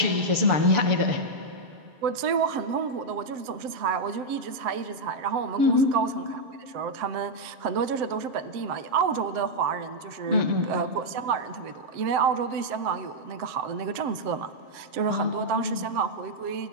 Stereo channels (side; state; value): left; late; 7.7 ms